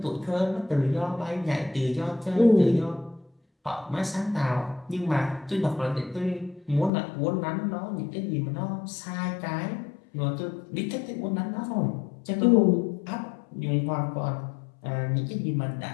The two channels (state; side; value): drops out; right; at 6.9 s